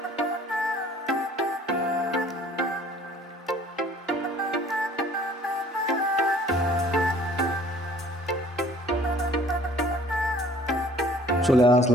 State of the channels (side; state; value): both; normal; correlation 0.53